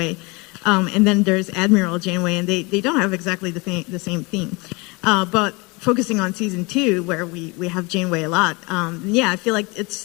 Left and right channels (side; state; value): right; quieter; 26.9 dB